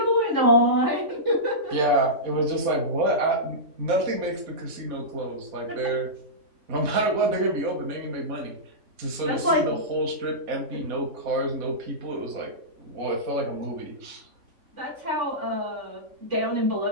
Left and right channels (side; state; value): left; late; 3.5 ms